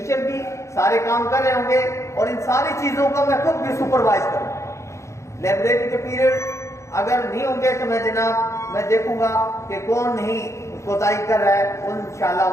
بھی سارے کام کر رہے ہوں گے, اور ان ساری چیزوں کو میں خود بھی سپروائز کروں گا. لائبریری کے پیریڈ اگر نہیں ہوں گے تو میں جناب میں دیکھوں گا کہ کون نہیں کوتاہی کر رہا ہے, انشاءاللہ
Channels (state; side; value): late; right; 0.14 ms